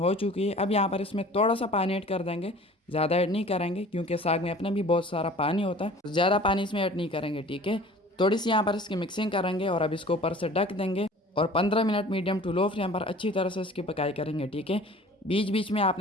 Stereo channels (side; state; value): both; normal; correlation 0.46